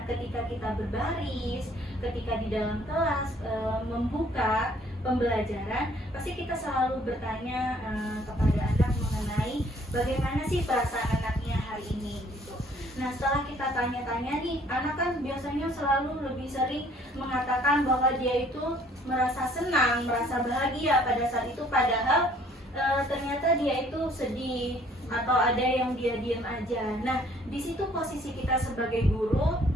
ketika kita berbaris, ketika di dalam kelas membuka pembelajaran, pasti kita selalu bertanya kepada anak mengenai bagaimana sih perasaan anaknya hari ini gitu. Nah, setelah kita tanya-tanya nih, anak kan biasanya selalu lebih sering mengatakan bahwa dia itu merasa senang, merasa bahagia pada saat itu, padahal ternyata dia itu sedih atau ada yang dia diam aja. Nah, di situ posisi kita sebagai guru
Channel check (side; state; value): both; normal; correlation 0.59